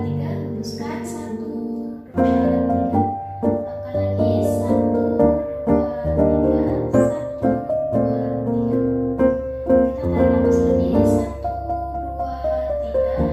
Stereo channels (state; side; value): identical; both; correlation 1.00